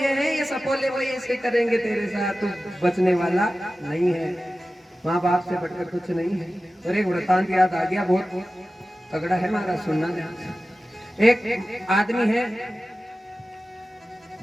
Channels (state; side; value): normal; both; correlation 0.95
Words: हैं ये सपोले, वो ऐसे करेंगे तेरे साथ, तू बचने वाला नहीं है। माँ बाप से बढ़कर कुछ नहीं है। और एक वृतांत याद आ गया, बहुत तगड़ा है हमारा, सुनना ध्यान से। एक आदमी है,